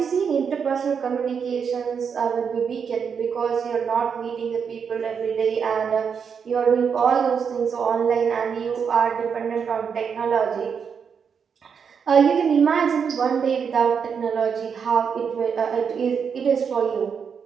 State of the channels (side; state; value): left; quieter; 6.6 dB